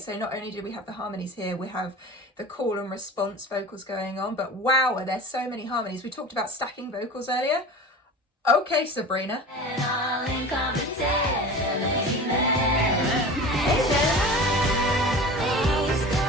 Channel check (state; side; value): normal; both; correlation 0.36